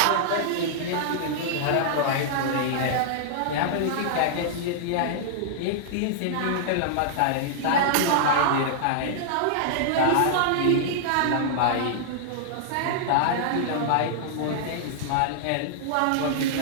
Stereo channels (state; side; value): different; both; correlation -0.01